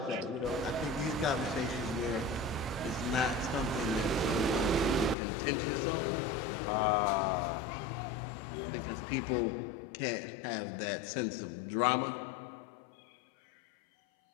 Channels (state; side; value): drops out; right; at 5.2 s